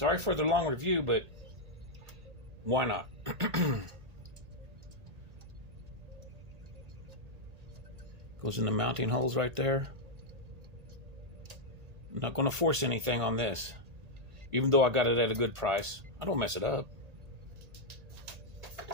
for the long review, but why not? Goes in the mounting holes right there. I'm not going to force anything on this, even though I got it at a good price. I don't mess it up.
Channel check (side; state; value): left; late; 1.8 ms